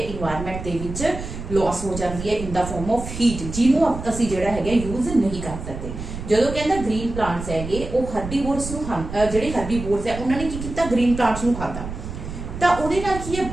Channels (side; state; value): right; noise; rumble, 9 dB below the sound